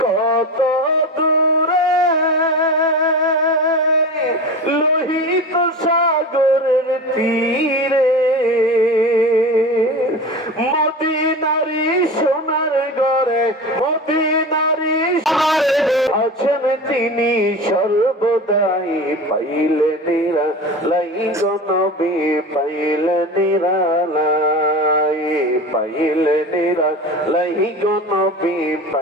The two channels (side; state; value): both; normal; correlation 0.30